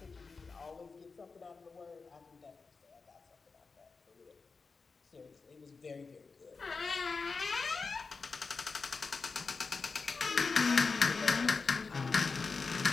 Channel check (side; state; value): right; quieter; 4.5 dB